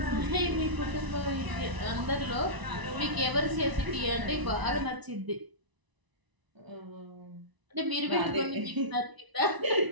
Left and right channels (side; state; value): left; late; 1.0 ms